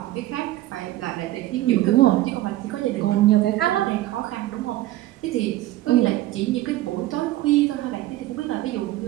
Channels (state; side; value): quieter; left; 15.8 dB